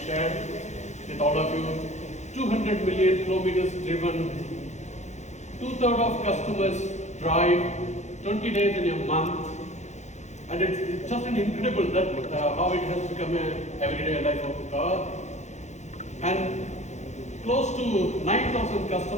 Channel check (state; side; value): late; right; 0.33 ms